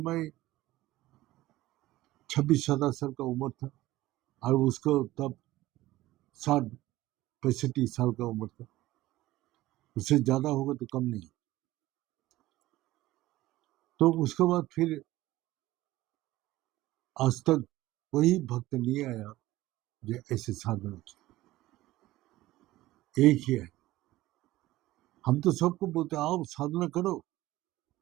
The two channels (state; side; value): quieter; left; 16.8 dB